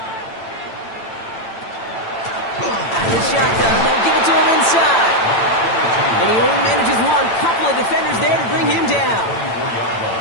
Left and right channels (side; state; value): right; late; 8.9 ms